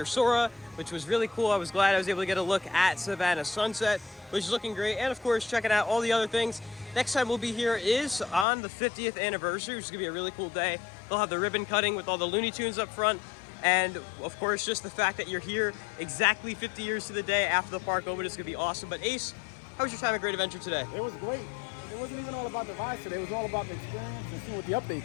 Sora, which was really cool. I was glad I was able to get a look at Savannah sunset, which is looking great. And of course, checking out all the other things. Next time we'll be here is on the 50th anniversary, which is gonna be a really cool day. They'll have the ribbon cutting with all the Looney Tunes up front. And of course, just the fact that you're here exactly 50 years to the day after the park opened is gonna be awesome. But Ace, how was your time at Great Adventure today? It was great. It wasn't even all about the rides today. It was all about the experience and seeing what the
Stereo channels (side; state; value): right; drops out; at 8.5 s